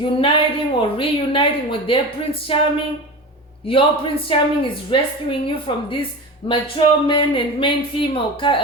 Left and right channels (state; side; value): normal; both; correlation 0.29